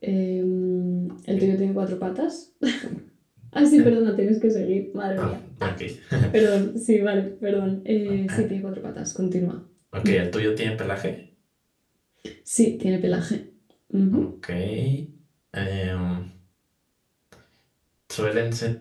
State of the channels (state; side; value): identical; both; correlation 1.00